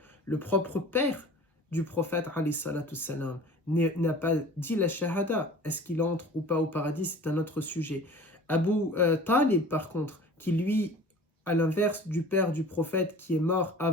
Le propre père du prophète alayhi salatu salam n'a pas dit la shahada. Est-ce qu'il entre ou pas au paradis? C'est un autre sujet. Abu Talib par contre, qui lui, à l'inverse du père du prophète qui est mort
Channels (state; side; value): normal; both; correlation 0.43